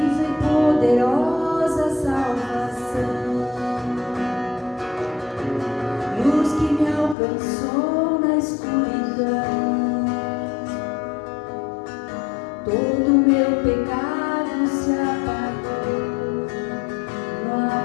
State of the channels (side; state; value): right; drops out; at 7.2 s